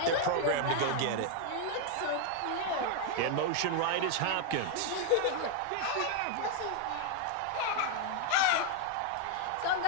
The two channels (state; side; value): different; both; correlation 0.01